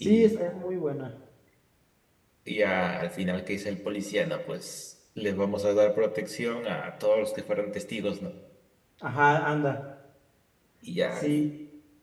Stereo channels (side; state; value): both; identical; correlation 1.00